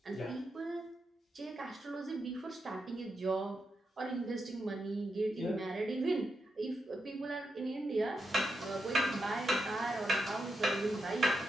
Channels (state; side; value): normal; both; correlation 0.85